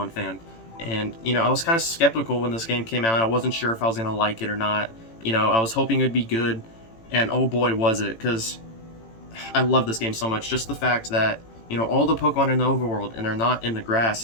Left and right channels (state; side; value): late; right; 18 ms